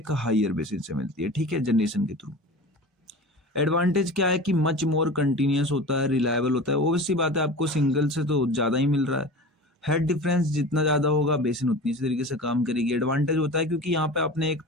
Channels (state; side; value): normal; both; correlation 0.35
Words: हायर बेसिन से मिलती है, ठीक है, जनरेशन के थ्रू। एडवांटेज क्या है कि मच मोर कंटिन्यूअस होता है, रिलायबल होता है। ऑब्वियस सी बात है आपको सिंगल से तो ज़्यादा ही मिल रहा है। हेड डिफरेंस जितना ज़्यादा होगा बेसिन उतनी इसी तरीके से काम करेगी। एडवांटेज होता है क्योंकि यहाँ पे आपने एक